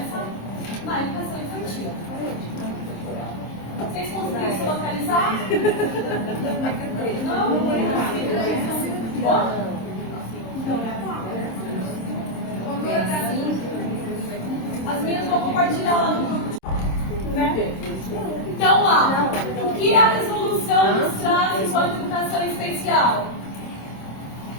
na educação infantil. Vocês conseguiram se localizar? Não? Não? As minhas vou compartilhar lá no grupo. Né? Então, lá, o que a resolução nos traz enquanto educação especial?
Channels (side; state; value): right; late; 26 ms